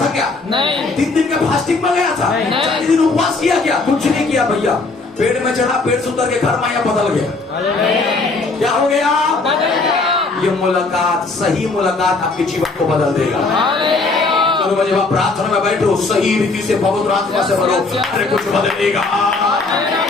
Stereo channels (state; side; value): quieter; right; 3.6 dB